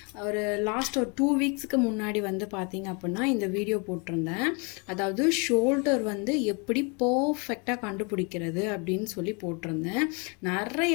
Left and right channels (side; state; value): right; quieter; 33.0 dB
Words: லாஸ்ட் ஒரு 2 வீக்ஸுக்கு முன்னாடி வந்து பார்த்திங்க அப்படின்னா இந்த வீடியோ போட்டிருந்தேன். அதாவது ஷோல்டர் வந்து எப்படி பர்ஃபெக்டாக கண்டுபிடிக்கிறது அப்படின்னு சொல்லி போட்டிருந்தேன்.